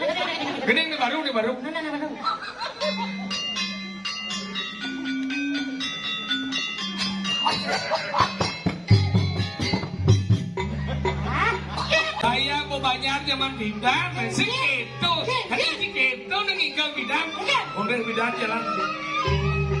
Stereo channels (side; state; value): both; identical; correlation 1.00